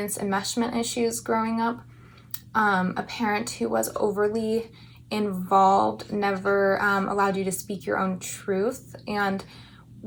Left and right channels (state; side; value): identical; both; correlation 1.00